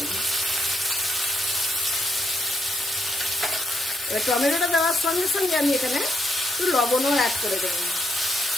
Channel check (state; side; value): normal; both; correlation 0.78